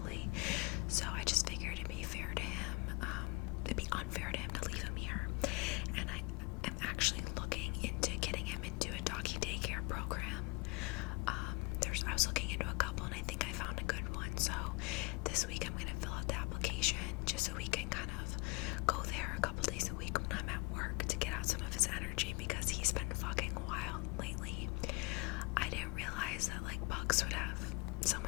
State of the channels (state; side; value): quieter; right; 26.6 dB